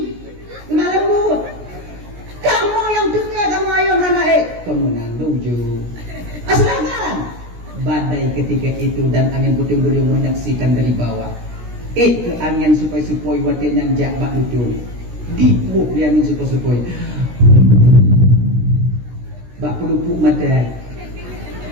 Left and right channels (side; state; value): left; late; 16 ms